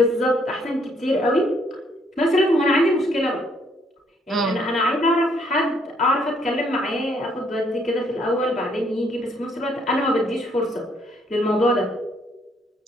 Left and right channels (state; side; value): normal; both; correlation 0.68